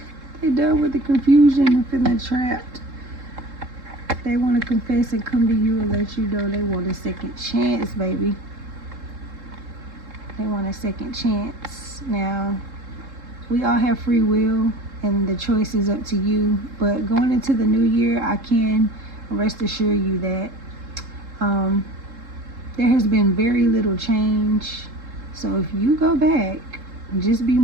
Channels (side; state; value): left; late; 3.7 ms